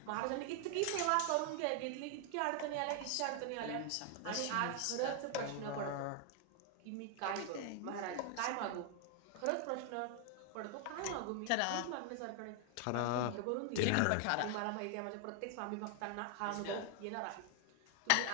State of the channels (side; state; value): both; different; correlation 0.00